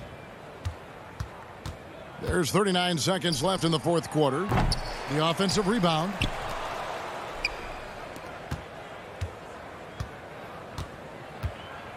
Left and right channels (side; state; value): both; identical; correlation 1.00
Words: There's 39 seconds left in the fourth quarter. The offensive rebound.